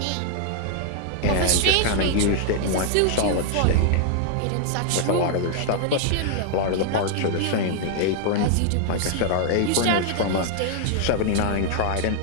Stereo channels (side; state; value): both; different; correlation 0.00